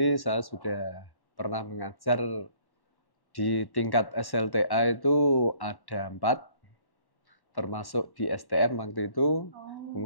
saya sudah pernah mengajar di tingkat SLTA itu ada 4, termasuk di STM waktu itu,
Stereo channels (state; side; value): late; right; 1.1 ms